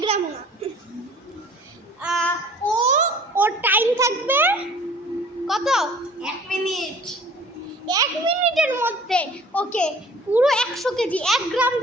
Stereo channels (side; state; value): both; normal; correlation 0.50